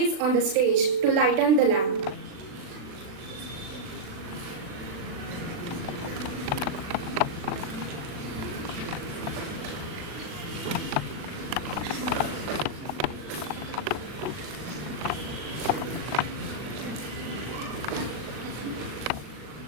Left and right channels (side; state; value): left; late; 39 ms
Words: on the stage to lighten the lamp.